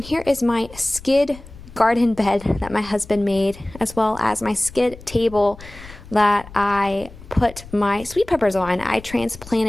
here is my skid garden bed that my husband made, as well as my skid table that I put my sweet peppers on. I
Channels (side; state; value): left; noise; rumble, 18 dB below the sound